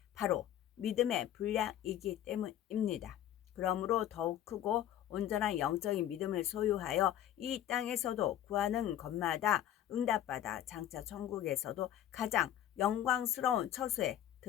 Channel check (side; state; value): right; quieter; 11.4 dB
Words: 바로 믿음의 분량이기 때문입니다. 그러므로 더욱 크고 온전한 영적인 믿음을 소유하여 이 땅에서도 구하는 것마다 응답받아 장차 천국에서도 가장 영광스러운 처소에